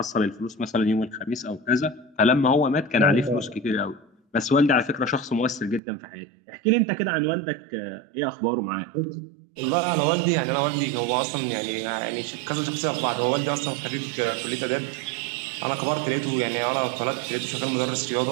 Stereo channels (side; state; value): left; drops out; at 5.8 s